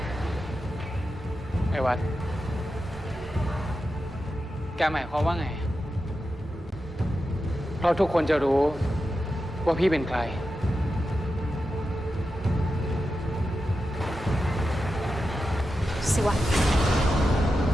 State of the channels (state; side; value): normal; both; correlation 0.90